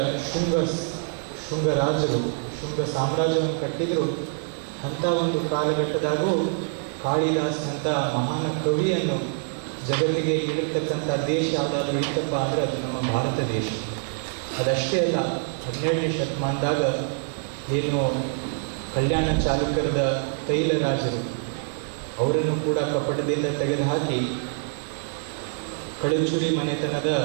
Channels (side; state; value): left; silent; digital silence